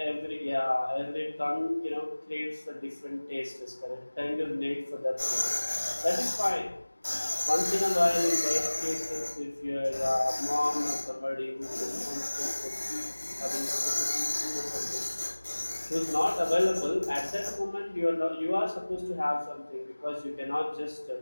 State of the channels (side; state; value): both; inverted; correlation -1.00